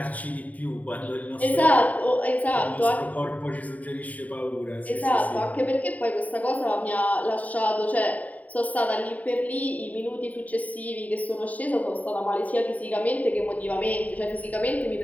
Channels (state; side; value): late; right; 0.072 ms